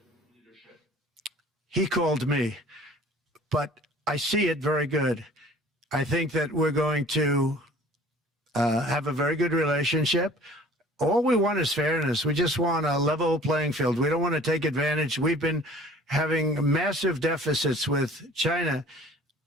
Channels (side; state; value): both; normal; correlation 0.49